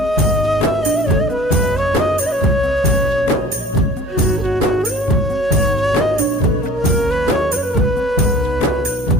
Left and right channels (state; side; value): normal; both; correlation 0.47